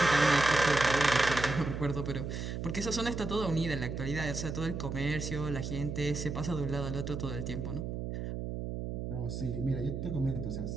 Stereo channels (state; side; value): noise; right; hum, 4 dB below the sound